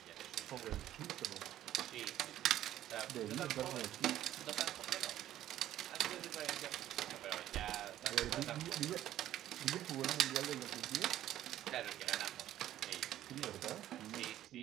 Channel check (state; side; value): quieter; left; 12.7 dB